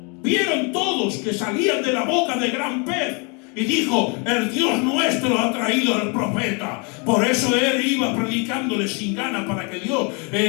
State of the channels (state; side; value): quieter; right; 33.4 dB